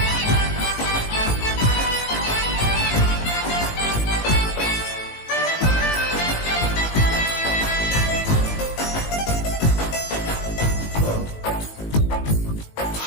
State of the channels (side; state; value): right; late; 19 ms